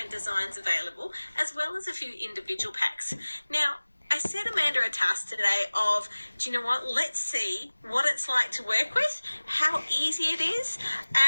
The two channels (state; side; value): inverted; both; correlation -1.00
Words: designs available, as well as a few individual packs. Now, I set Amanda a task today of, do you know what, let's see what it's like to work with, how easy it is,